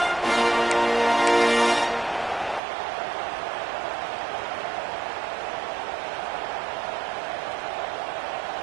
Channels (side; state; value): left; drops out; at 2.6 s